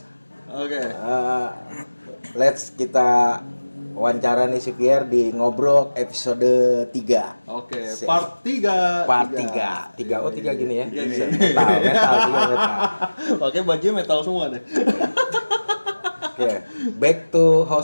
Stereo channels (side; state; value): both; inverted; correlation -1.00